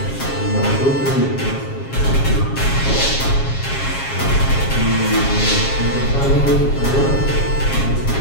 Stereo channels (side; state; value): right; late; 7.4 ms